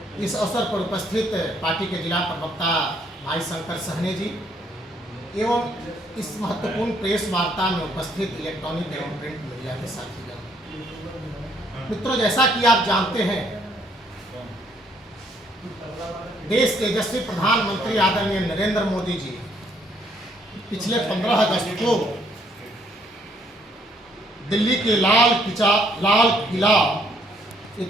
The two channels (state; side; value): normal; both; correlation 0.67